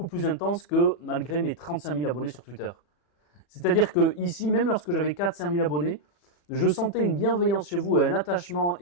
plus intense que malgré mes 35 000 abonnés sur Twitter. C'est-à-dire que ici, même lorsque j'avais 4-5 000 abonnés, je sentais une bienveillance chez vous et un attachement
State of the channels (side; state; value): right; late; 40 ms